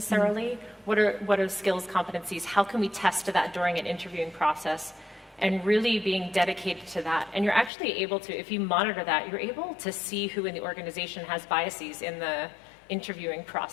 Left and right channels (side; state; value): right; drops out; at 7.7 s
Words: What are skills, competencies? How can we test that during an interviewing process? And really being dedicated to that. And you're actually able to, if you monitor that, you're able to see who in the organization has biases in the interviewing